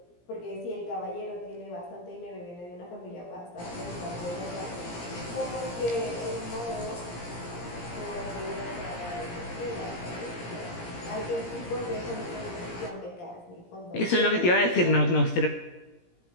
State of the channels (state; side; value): late; right; 17 ms